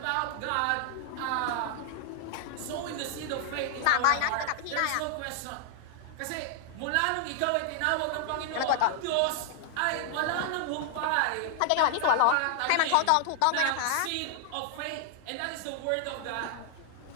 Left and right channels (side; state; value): both; different; correlation 0.00